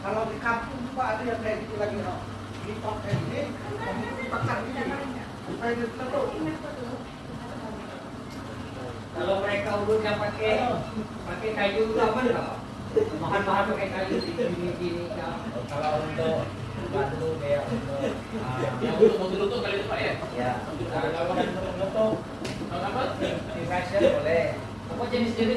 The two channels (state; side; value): identical; both; correlation 1.00